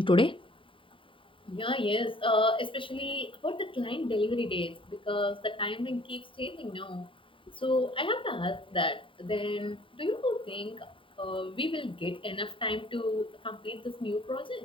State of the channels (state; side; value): late; right; 0.25 ms